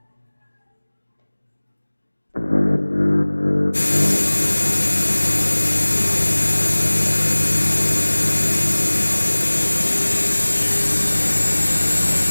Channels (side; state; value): both; inverted; correlation -1.00